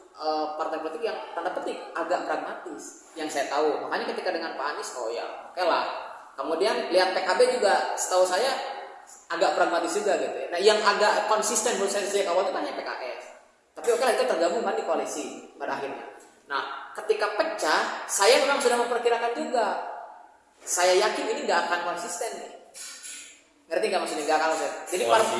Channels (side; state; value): both; identical; correlation 1.00